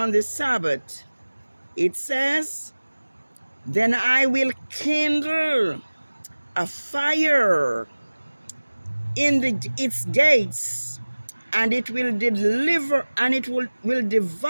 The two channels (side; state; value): both; inverted; correlation -1.00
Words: the Sabbath, it says, then I will kindle a fire in its gates, and it will deliver, and it will